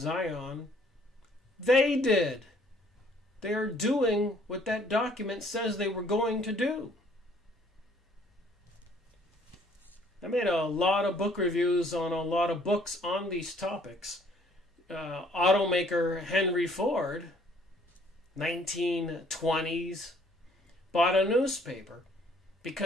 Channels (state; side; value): normal; both; correlation 0.61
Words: They did. They're doing what that document says they were going to do. I made a lot of book reviews on a lot of books on these topics. Automaker Henry Ford, 1920s, bought a newspaper